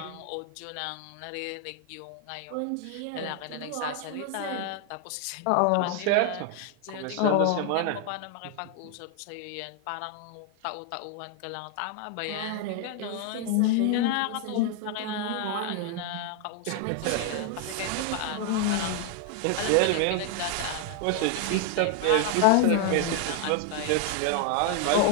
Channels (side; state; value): both; different; correlation 0.00